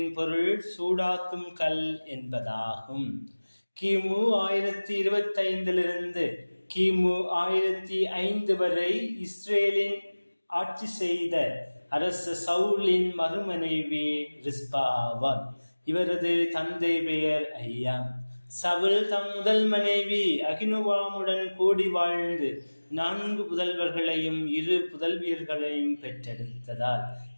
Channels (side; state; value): both; inverted; correlation -1.00